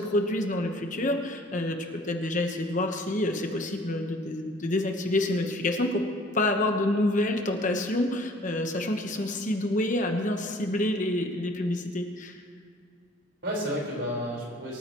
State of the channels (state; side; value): normal; both; correlation 0.53